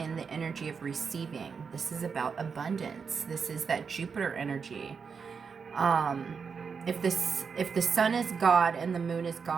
the energy of receiving. This is about abundance. This is that Jupiter energy. If the sun is God and the moon is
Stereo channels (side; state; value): left; quieter; 5.8 dB